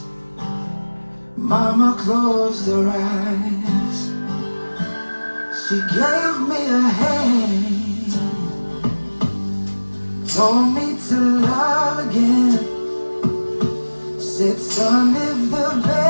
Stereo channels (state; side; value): inverted; both; correlation -1.00